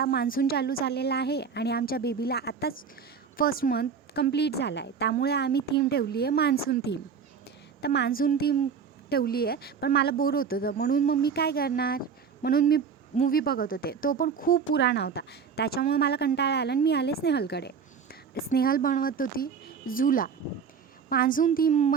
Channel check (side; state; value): left; quieter; 6.3 dB